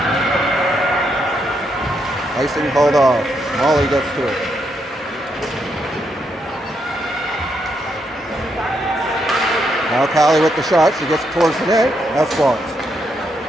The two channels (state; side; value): normal; both; correlation 0.78